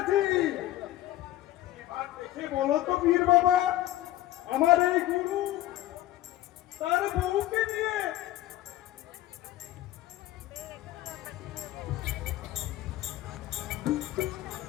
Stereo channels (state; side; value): quieter; right; 14.9 dB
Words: এবার দেখে বলো তো পীর বাবা, আমার এই গুরু তার বউকে নিয়ে